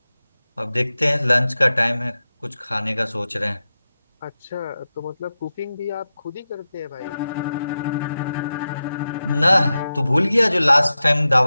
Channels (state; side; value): inverted; both; correlation -0.92